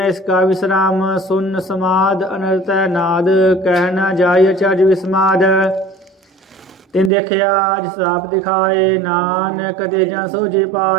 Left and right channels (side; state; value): left; drops out; at 7.1 s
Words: इसका विश्राम सुन समाद अनर्थ नाद कहना जाय चर्ज विस्माद तिन देखिया जिस आप दिखाए नानक तेजन सो जी